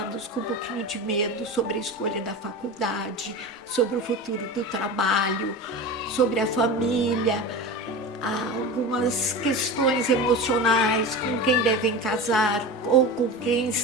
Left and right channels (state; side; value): normal; both; correlation 0.28